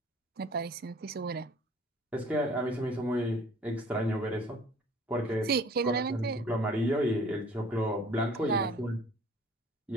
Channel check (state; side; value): normal; both; correlation 0.51